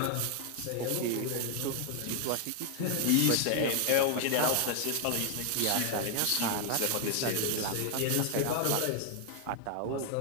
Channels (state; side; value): different; both; correlation 0.00